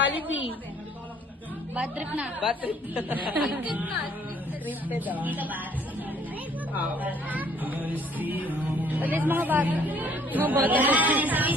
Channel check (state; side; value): normal; both; correlation 0.60